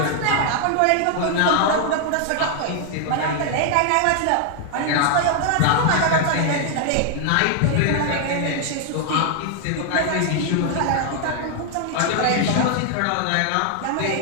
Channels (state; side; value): different; both; correlation 0.00